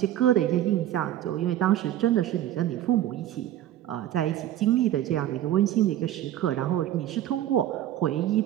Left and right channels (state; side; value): quieter; left; 12.3 dB